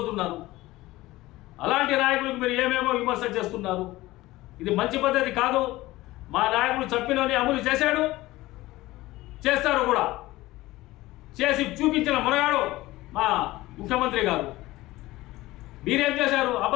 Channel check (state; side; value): quieter; right; 18.2 dB